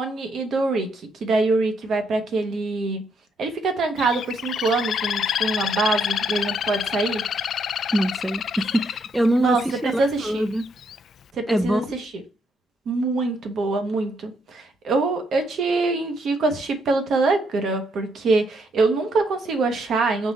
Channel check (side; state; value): both; normal; correlation 0.74